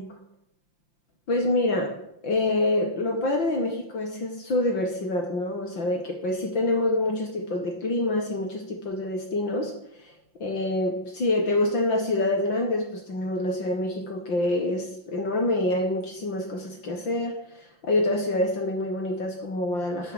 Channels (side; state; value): right; late; 5.8 ms